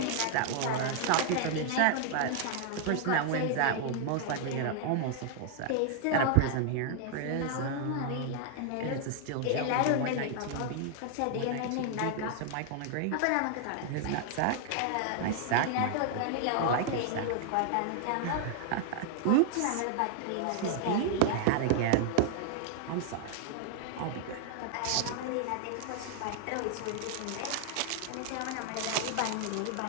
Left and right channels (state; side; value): different; both; correlation 0.00